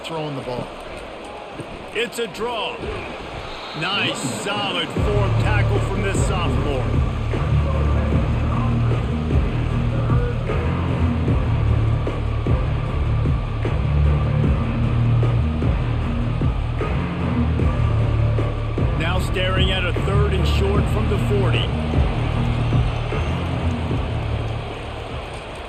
throwing the ball. It's a draw. Nice, solid form tackle from this sophomore. Now staring at a 3rd and short from the 40.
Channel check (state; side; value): identical; both; correlation 1.00